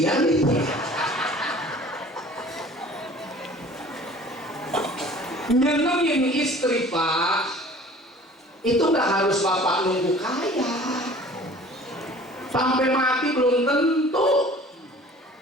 nih. Nyenengin istri Pak, itu nggak harus Bapak nunggu kaya. Sampai mati belum tentu.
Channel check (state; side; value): normal; both; correlation 0.47